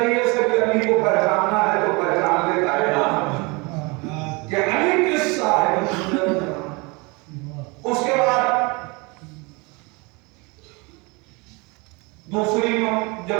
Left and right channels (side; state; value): left; quieter; 27.7 dB